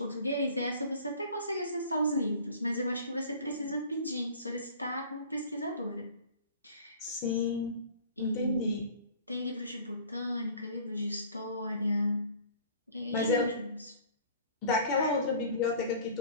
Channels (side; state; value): both; inverted; correlation -0.47